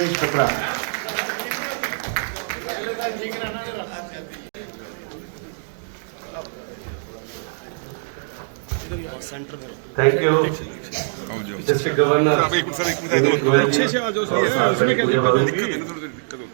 Batra. Thank you district governor.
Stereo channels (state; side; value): silent; left; digital silence